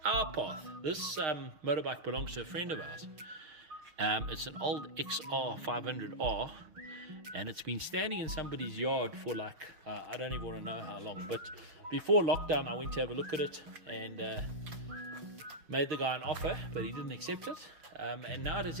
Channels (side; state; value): left; late; 6.5 ms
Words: our path. This motorbike belongs to a friend of ours. It's an old XR 500R, and it's been standing in somebody's yard for like, I don't even want to know how long, but before lockdown I went to have a look at it and made the guy an offer, but he didn't accept it, and now it has